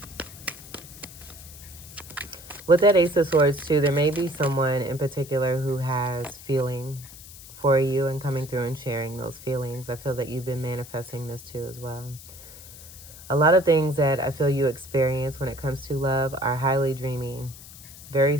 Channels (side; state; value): left; noise; hiss, 17 dB below the sound